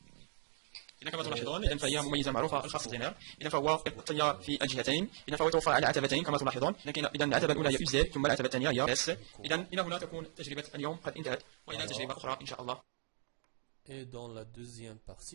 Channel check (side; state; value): left; silent; 53 dB below the other